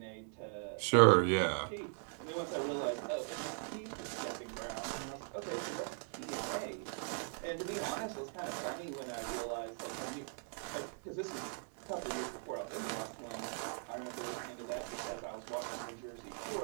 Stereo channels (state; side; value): silent; left; 51 dB below the other